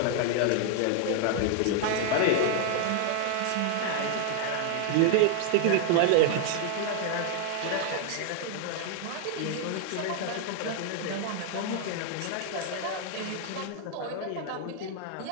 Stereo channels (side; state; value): both; different; correlation 0.00